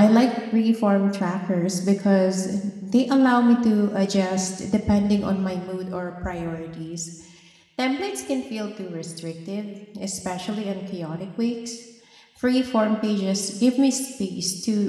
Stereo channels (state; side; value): identical; both; correlation 1.00